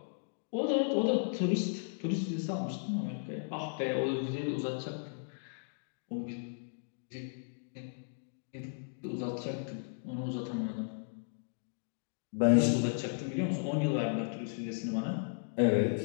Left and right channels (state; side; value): silent; right; digital silence